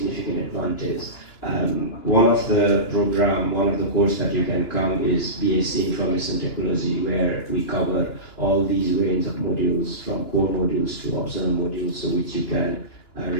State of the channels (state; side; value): late; right; 2.9 ms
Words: advantage. One of the course that you can come is BSc Information Technology, where we cover all these range of modules, from core modules to optional modules, so which you can